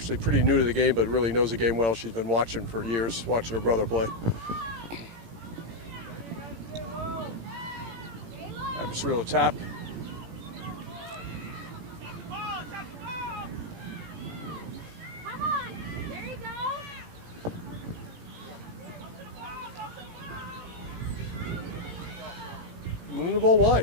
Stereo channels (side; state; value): left; late; 18 ms